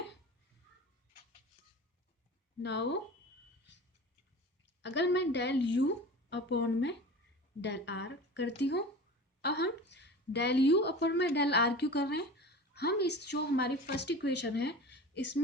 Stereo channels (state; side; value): normal; both; correlation 0.35